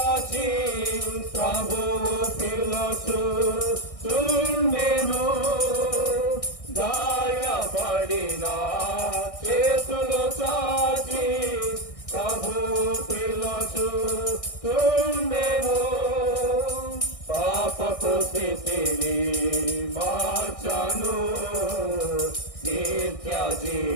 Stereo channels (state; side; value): late; right; 1.6 ms